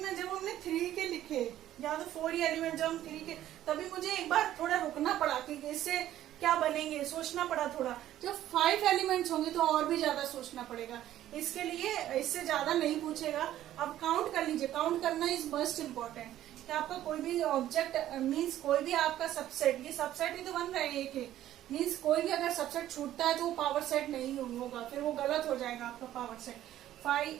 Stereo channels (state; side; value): quieter; left; 12.8 dB